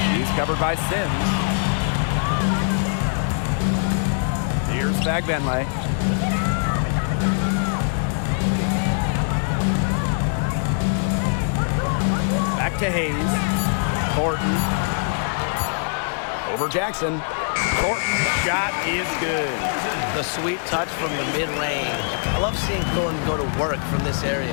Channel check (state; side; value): silent; right; digital silence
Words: She's covered by Sims. Here's Fagbenle. Back to Hayes. Thornton. Over Jackson. Thornton's shot is good. The sweet touch from the mid-range. I love seeing Thornton go to work from this